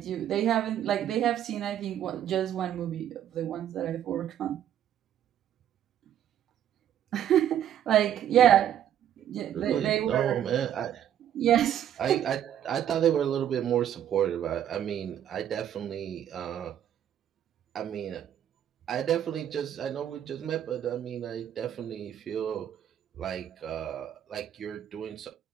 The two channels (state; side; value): quieter; left; 10.4 dB